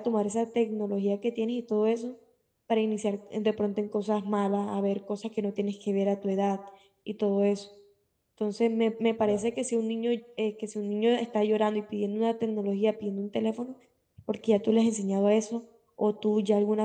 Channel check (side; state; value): both; identical; correlation 1.00